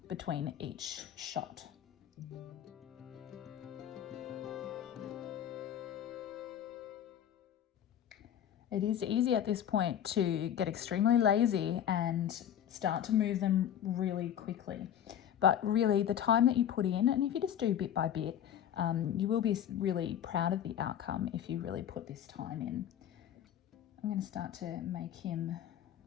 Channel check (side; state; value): right; quieter; 10.1 dB